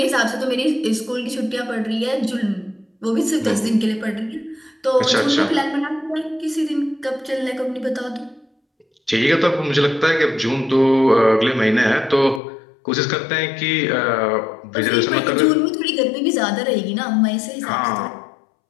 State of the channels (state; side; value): drops out; right; at 12.4 s